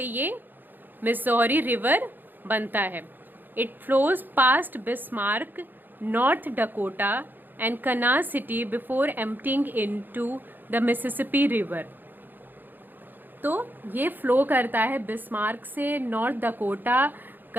ये मिसौरी रिवर बनता है. It flows past Bismarck, north Dakota and Kansas city before emptying into the Mississippi river. तो ये फ्लो करता है बिस्मार्क से, नॉर्थ डकोटा,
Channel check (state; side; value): late; left; 0.091 ms